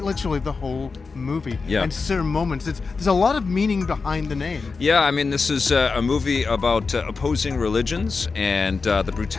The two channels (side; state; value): right; quieter; 4.5 dB